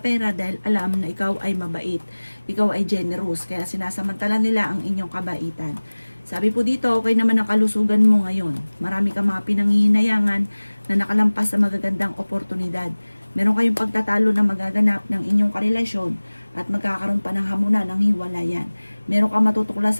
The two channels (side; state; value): both; inverted; correlation -1.00